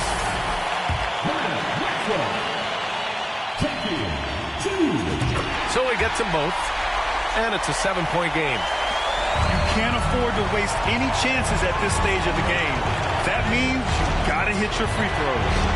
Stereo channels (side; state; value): both; identical; correlation 1.00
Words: So he gets them both. And it's a 7-point game. You can't afford to waste any chances at this stage of the game. That means you've got to hit your free throws.